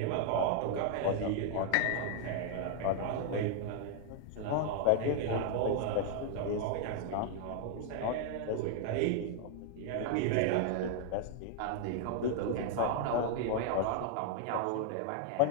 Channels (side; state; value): both; different; correlation 0.00